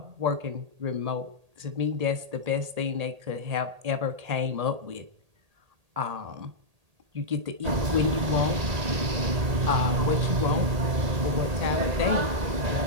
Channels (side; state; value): left; late; 1.8 ms